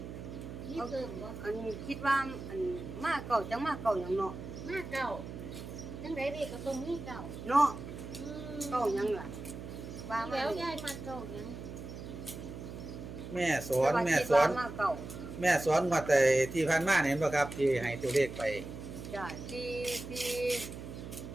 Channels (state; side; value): noise; right; hum, 10 dB below the sound